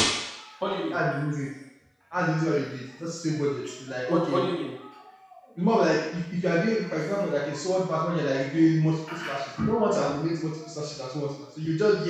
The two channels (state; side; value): identical; both; correlation 1.00